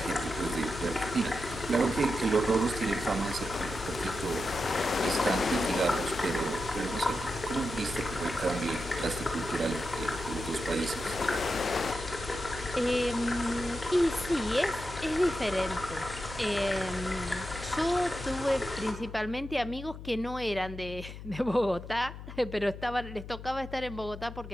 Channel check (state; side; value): noise; left; hum, 12 dB below the sound